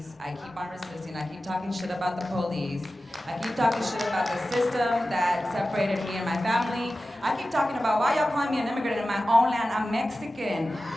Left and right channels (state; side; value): normal; both; correlation 0.94